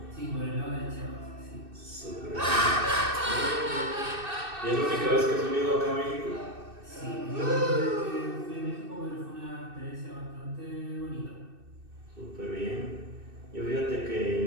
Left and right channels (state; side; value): late; left; 2.6 ms